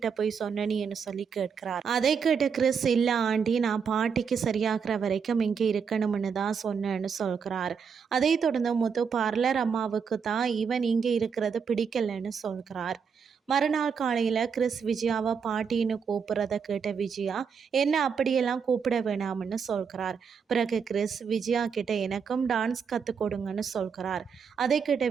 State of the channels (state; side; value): quieter; left; 6.4 dB